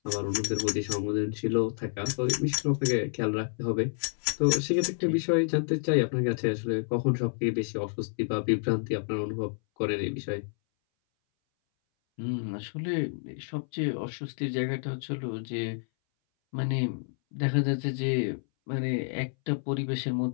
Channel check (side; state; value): right; silent; 58 dB below the other